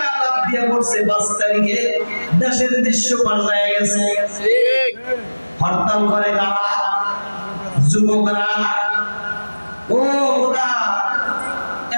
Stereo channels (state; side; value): inverted; both; correlation -1.00